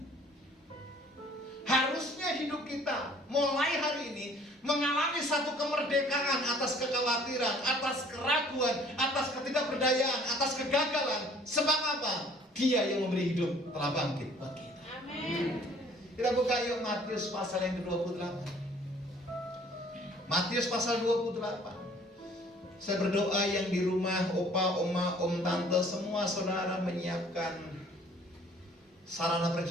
Harusnya hidup kita mulai hari ini mengalami satu kemerdekaan atas kekhawatiran, atas keraguan, atas ketidakberdayaan, atas kegagalan. Sebab apa? Dia yang memberi hidup telah bangkit buat kita. Amin. Kita buka yuk Matius pasal yang ke-28. Matius pasal 28. Saya berdoa yang di rumah, opa, oma, om, tante, semua saudara menyiapkan sarana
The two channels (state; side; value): normal; both; correlation 0.55